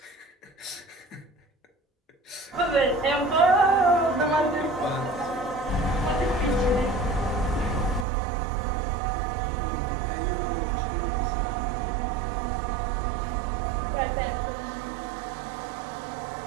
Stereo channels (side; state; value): left; drops out; at 8.1 s